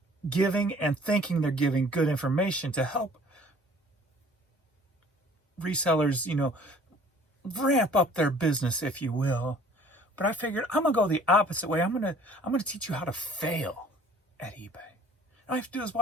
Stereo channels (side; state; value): both; normal; correlation 0.52